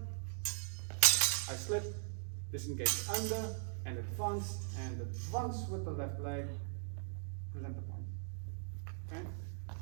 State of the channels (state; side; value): silent; left; digital silence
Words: I slip, disengage under, and advance with the left leg, present the point. Okay,